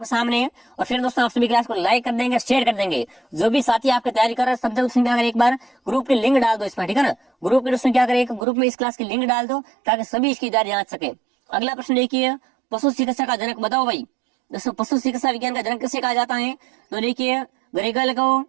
सामने है, और फिर दोस्तों आप सभी क्लास को लाइक कर देंगे, शेयर कर देंगे। जो भी साथी आपकी तैयारी कर रहे हैं सब दोस्तों क्या करें, एक बार ग्रुप की लिंक डाल दो इसमें, ठीक है ना। ग्रुप के दोस्तों क्या करें, ग्रुप में इस क्लास की लिंक डाल दो ताकि सभी इसकी तैयारी जांच सके। अगला प्रश्न देखिए, पशु चिकित्सा का जनक? बताओ भाई। दोस्तों पशु चिकित्सा विज्ञान का जनक किसे कहा जाता है? तो देखिए ग्रेगल को,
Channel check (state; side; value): drops out; left; at 8.5 s